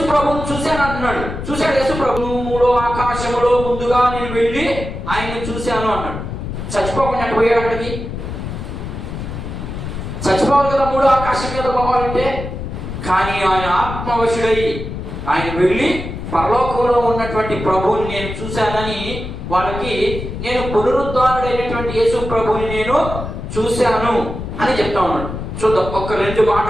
ప్రభువుని చూశాను అంటున్నాడు. చూశాడు యేసు ప్రభువులో ఆకాశములో ముందుగా నేను వెళ్ళి ఆయన్ని చూశాను అన్నాడు. చచ్చిపోకుండా పోయాడు అక్కడికి. చచ్చిపోవాలి కదా మూడో ఆకాశం మీద పోవాలంటే. కానీ ఆయన ఆత్మవశుడై ఆయన వెళ్ళి పరలోకంలో ఉన్నటువంటి ప్రభువుని నేను చూశానని వాళ్ళకి, నేను పునరుద్ధారుడైనటువంటి యేసు ప్రభువుని నేను చూశాను అని చెప్తా ఉన్నాడు. చూద్దాం, ఒక 2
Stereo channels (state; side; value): noise; left; rumble, 7 dB below the sound